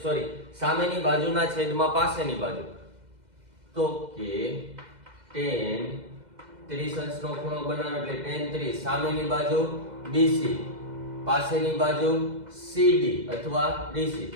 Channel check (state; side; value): late; left; 2.0 ms